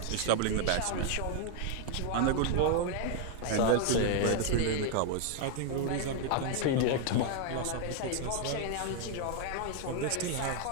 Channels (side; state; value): both; different; correlation 0.00